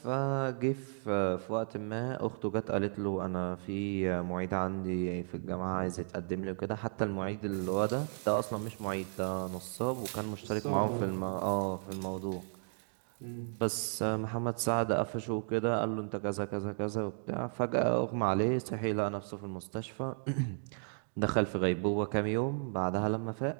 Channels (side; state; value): left; silent; digital silence